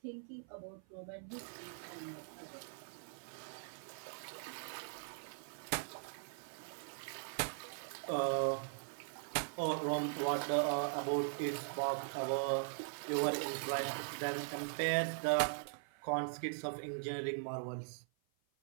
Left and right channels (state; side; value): silent; left; 50 dB below the other